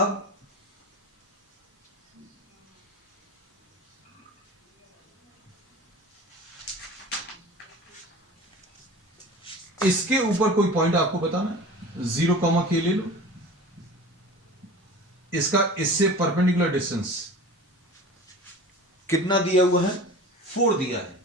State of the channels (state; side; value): normal; both; correlation 0.38